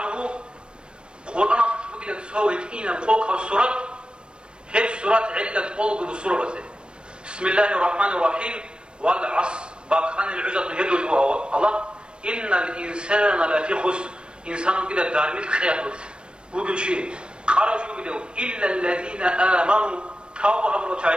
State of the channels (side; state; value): left; late; 0.055 ms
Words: قرآن بقول سوي إينا فوق السورة هي سورة علة قلب السورة بسم الله الرحمن الرحيم والعصر باقان العزة يدل الله إن الإنسان لفي خسر إنسان كده دارميت خياطات وقل شيء قالوا شو بدو إلا الذين آمنوا توبوا أمروا